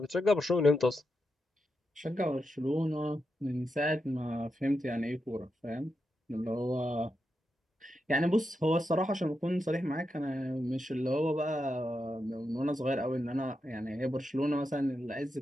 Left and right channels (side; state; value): both; normal; correlation 0.86